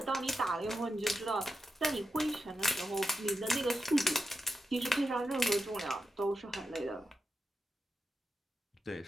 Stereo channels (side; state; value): both; normal; correlation 0.87